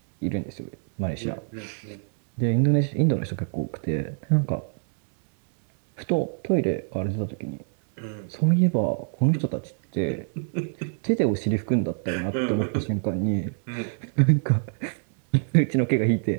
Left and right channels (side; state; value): left; silent; digital silence